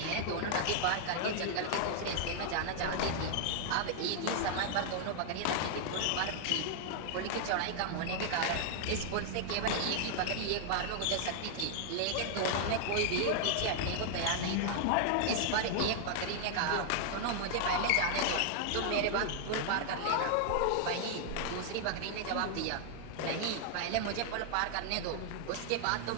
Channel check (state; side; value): different; both; correlation 0.00